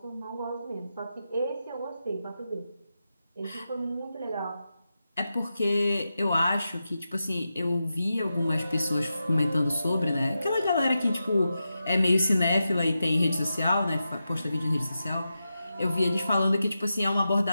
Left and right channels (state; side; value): inverted; both; correlation -0.90